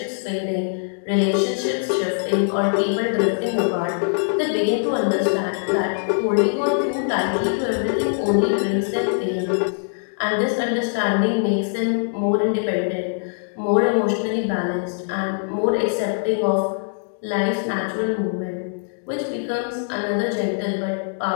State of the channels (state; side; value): silent; right; digital silence